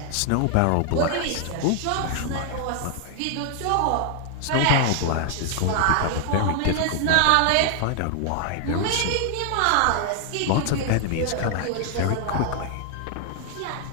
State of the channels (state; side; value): different; both; correlation 0.00